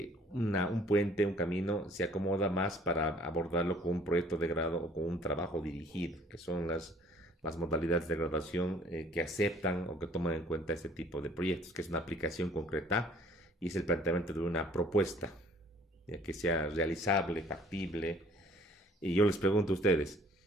un puente, un camino, se acomoda más para abordarlo con un proyecto de grado o con un trabajo dirigido, que son las modalidades de graduación que aceptan o que toman en cuenta este tipo de proyectos, que es una aplicación concreta y es el planteamiento de una propuesta, ya que sea realizable, factible. Y yo les pregunto a ustedes,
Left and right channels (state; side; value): normal; both; correlation 0.56